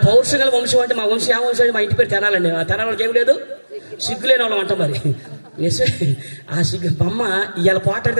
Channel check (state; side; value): inverted; both; correlation -1.00